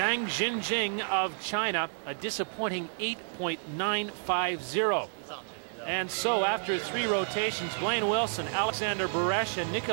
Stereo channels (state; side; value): silent; left; digital silence